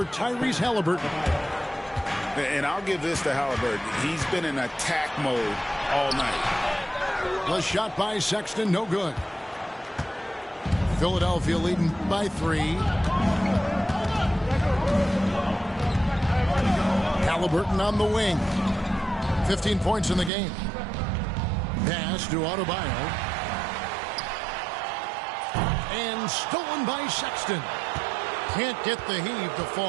Tyrese Halliburton. And I'll give this to Halliburton. He's been in attack mode all night. The shot by Sexton, no good. Philadelphia leading by 3. Halliburton on the wing. 15 points in the game. Pass to Adebayo. And stolen by Sexton. Can't get the heave to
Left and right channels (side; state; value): left; drops out; at 20.3 s